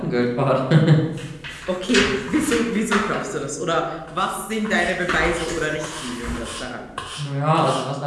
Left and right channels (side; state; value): both; identical; correlation 1.00